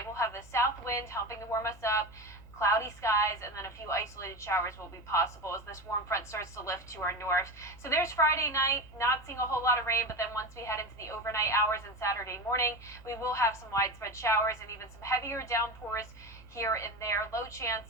We'll have the south wind helping to warm us up, cloudy skies, and then a few isolated showers will be possible as this warm front starts to lift to our north. So there's Friday night, not seeing a whole lot of rain, but then once we head into the overnight hours and Saturday morning, we will have some widespread showers and even some heavier downpours here and there. Low chance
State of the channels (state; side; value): noise; left; hum, 22 dB below the sound